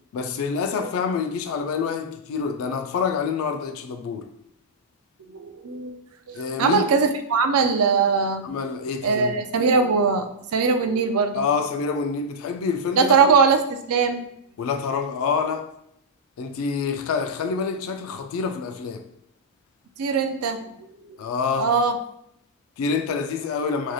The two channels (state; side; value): normal; both; correlation -0.11